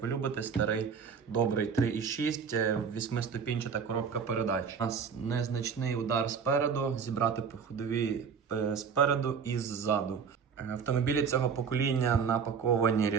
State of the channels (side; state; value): left; quieter; 6.4 dB